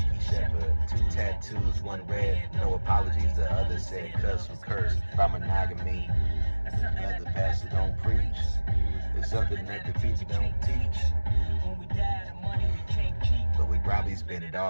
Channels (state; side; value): inverted; both; correlation -1.00